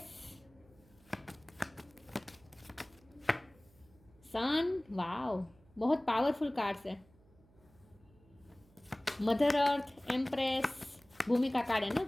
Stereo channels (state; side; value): noise; right; hum, 28 dB below the sound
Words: sun, wow, बहुत पावरफुल कार्ड्स है। मदर अर्थ, एम्प्रेस, भूमि का कार्ड है